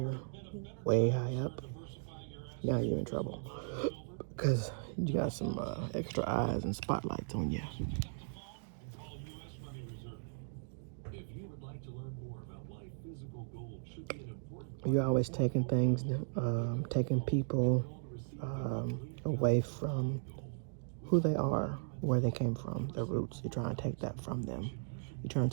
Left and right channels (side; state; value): left; silent; digital silence